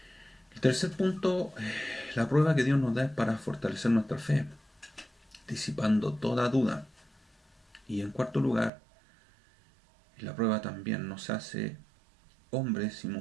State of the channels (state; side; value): drops out; left; at 8.7 s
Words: El tercer punto, la prueba que Dios nos da es para fortalecer nuestra fe, disipando toda duda. Y en cuarto lugar, la prueba también nos hace hombres y